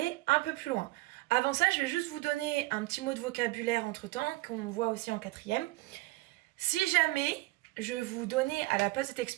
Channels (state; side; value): quieter; left; 20.7 dB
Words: un peu plus loin. Avant ça, je vais juste vous donner un petit mot de vocabulaire entre-temps, qu'on voit aussi en 4e. Si jamais je vous donnais à la place de cette